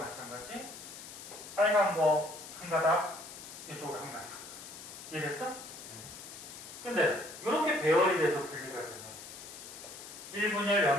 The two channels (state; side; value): noise; left; hiss, 13 dB below the sound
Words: 빨간 거 한 가닥, 이쪽으로 한 가닥. 이해됐어? 근데 이렇게 배열이 돼서 분리가 되면 1분열